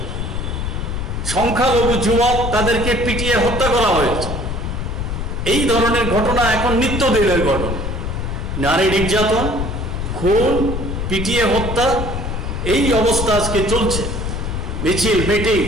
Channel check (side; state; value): left; noise; rumble, 3 dB below the sound